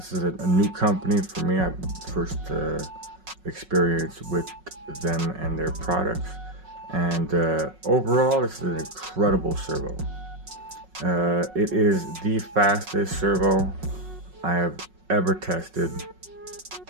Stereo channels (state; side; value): late; left; 5.4 ms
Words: is a new company for me. I first experienced with them and their products, and overall this is an incredible servo. It is the fastest servo I have ever tested,